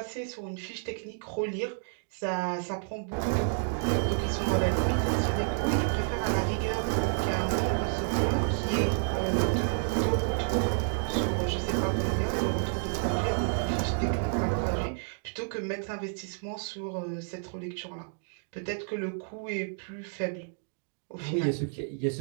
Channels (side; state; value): left; silent; digital silence